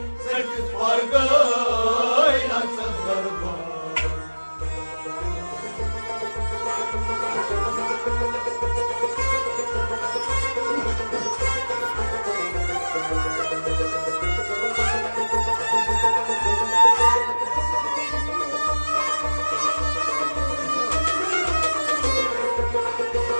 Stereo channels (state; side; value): inverted; both; correlation -1.00